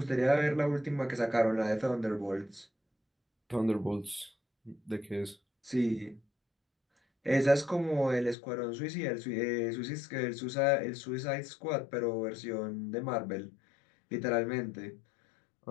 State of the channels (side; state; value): right; drops out; at 8.3 s